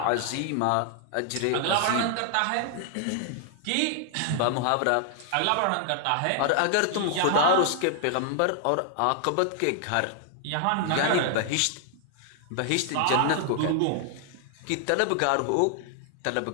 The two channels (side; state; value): both; different; correlation 0.00